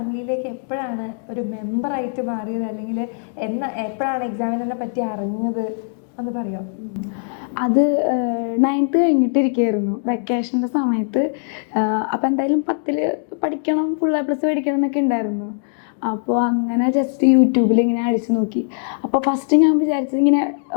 എപ്പോഴാണ് ഒരു മെമ്പറായിട്ട് മാറിയത്, അല്ലെങ്കിൽ എപ്പോഴാണ് എക്സാമിനറിനെ പറ്റി അറിഞ്ഞത് ഒന്ന് പറയോ? അത് 9th കഴിഞ്ഞിട്ടിരിക്കുകയായിരുന്നു, വെക്കേഷൻ്റെ സമയത്ത്. അപ്പം എന്തായാലും 10ൽ പഠിക്കണം, ഫുൾ A+ പഠിക്കണം എന്നൊക്കെ ഉണ്ടായിരുന്നു. അപ്പോൾ അങ്ങനെ ജസ്റ്റ് യൂട്യൂബിൽ ഇങ്ങനെ അടിച്ചു നോക്കി. അപ്പോൾ ഫസ്റ്റ് ഞാൻ വിചാരിച്ചത് ഇങ്ങനെ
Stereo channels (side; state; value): right; silent; digital silence